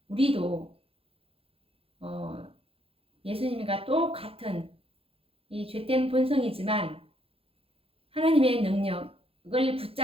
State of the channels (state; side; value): late; left; 0.27 ms